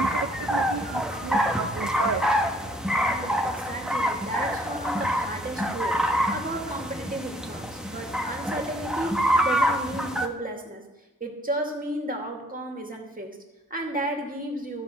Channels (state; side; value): normal; both; correlation 0.62